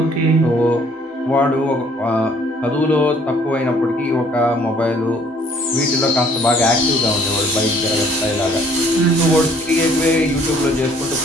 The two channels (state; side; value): normal; both; correlation 0.60